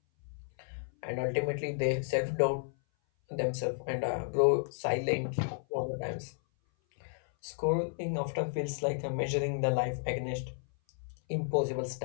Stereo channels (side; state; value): right; silent; 56 dB below the other